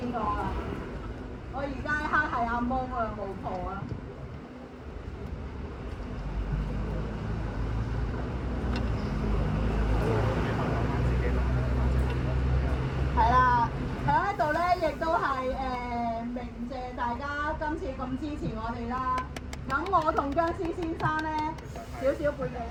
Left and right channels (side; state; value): both; identical; correlation 1.00